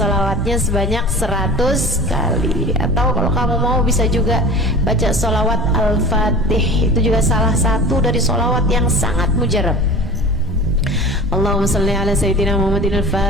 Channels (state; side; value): normal; both; correlation 0.38